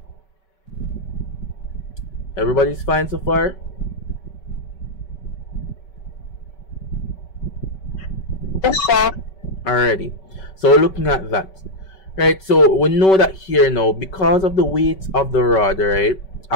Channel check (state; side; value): late; right; 5.3 ms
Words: Everybody's fine so far? Yes, sir. Alrighty. So we're looking at that. Right, so we know that here now, because of the weight of the rod, right,